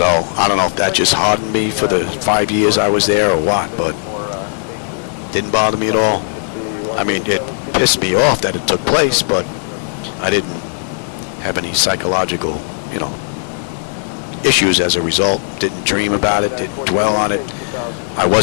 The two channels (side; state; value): right; silent; digital silence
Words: I don't know if that just hardened me for the 5 years I was there or what, but didn't bother me at all. I mean, it pissed me off that it took place, but I didn't have any psychological, issues as a result. Didn't dream about it, didn't dwell on it. I